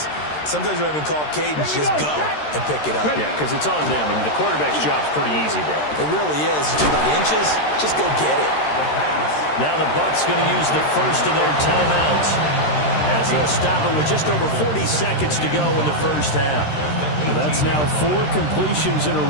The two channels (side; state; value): right; late; 13 ms